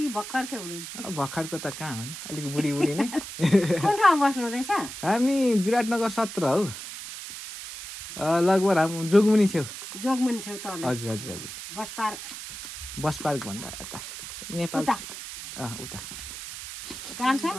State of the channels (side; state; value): right; noise; hiss, 10 dB below the sound